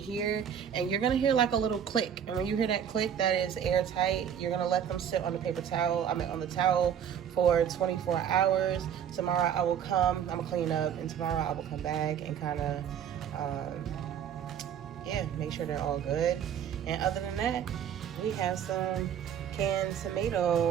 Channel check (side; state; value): left; quieter; 8.7 dB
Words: and you're gonna hear like a little click. And when you hear that click, that is airtight. You're gonna let them sit on the paper towel, on the towel for 24 hours. Tomorrow I will come, I'm gonna clean up, and tomorrow I will come back and kind of, make sure they're all good. And other than that, we have some canned